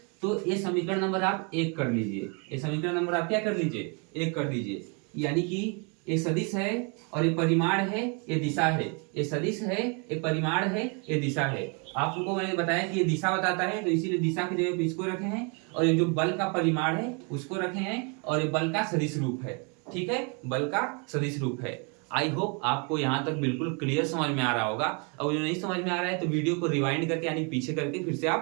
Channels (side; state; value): left; quieter; 34.3 dB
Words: तो ये समीकरण नंबर आप 1 कर लीजिए, ये समीकरण नंबर आप क्या कर लीजिए, 1 कर दीजिए। यानी कि ये सदिश है और ये परिमाण है, ये दिशा है। ये सदिश है, ये परिमाण है, ये दिशा है। आपको मैंने बताया कि ये दिशा बताता है, तो इसीलिए दिशा की जगह पे इसको रखे हैं, और ये जो बल का परिमाण है उसको रखे हैं, और ये बल का सदिश रूप है। ठीक है, बल का सदिश रूप है। आई होप आपको यहाँ तक बिल्कुल क्लियर समझ में आ रहा होगा। और जो नहीं समझ में आ रहा है तो वीडियो को रिवाइंड करके यानी पीछे करके फिर से